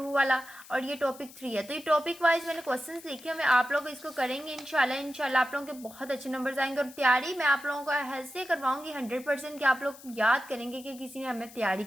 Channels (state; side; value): noise; left; hiss, 19 dB below the sound